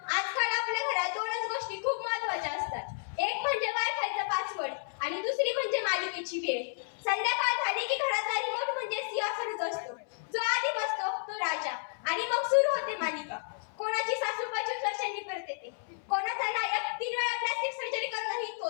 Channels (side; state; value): right; silent; 57 dB below the other